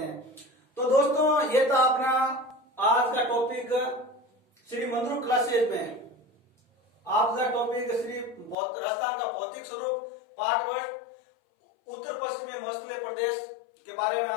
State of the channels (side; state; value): right; drops out; at 8.6 s